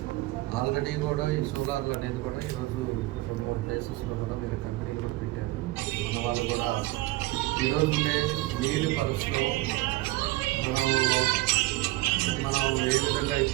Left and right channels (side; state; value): left; quieter; 19.1 dB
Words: ఆల్రెడీ కూడా ఈ సోలార్లు అనేది కూడా ఈరోజు 2-3 ప్లేసెస్లో కూడా వీళ్ళ కంపెనీలు కూడా పెట్టారు. మన వాళ్ళు కూడా ఈరోజు ఉండే నీటి పరిస్థితులు మనం ఏ విధంగా